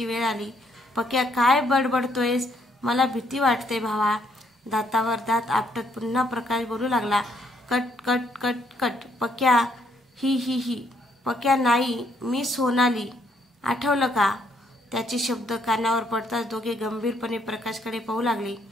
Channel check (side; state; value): both; normal; correlation 0.70